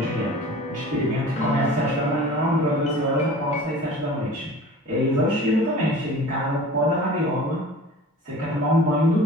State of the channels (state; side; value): normal; both; correlation 0.42